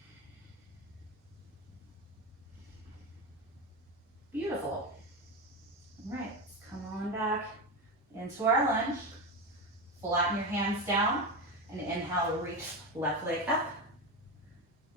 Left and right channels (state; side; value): normal; both; correlation 0.18